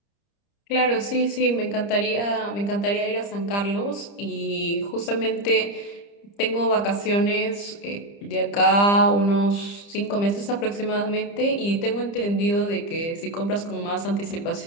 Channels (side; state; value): right; late; 30 ms